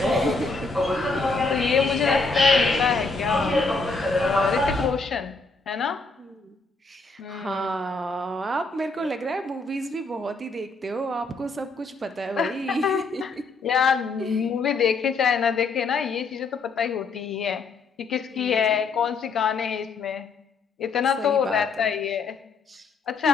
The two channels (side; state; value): right; quieter; 4.0 dB